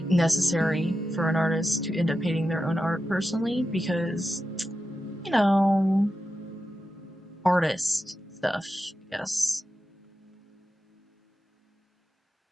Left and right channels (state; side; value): normal; both; correlation 0.90